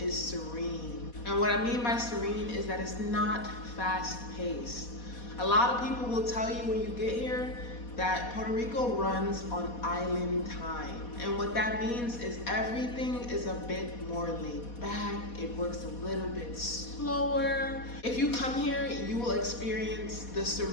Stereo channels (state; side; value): late; right; 4.2 ms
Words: serene. And what I mean by serene is that it's not fast paced. A lot of people will tell you when you get here that Puerto Rico runs on island time. And what that means is everything is a bit more laid back. It works a little bit slower. If you come here, you will experience the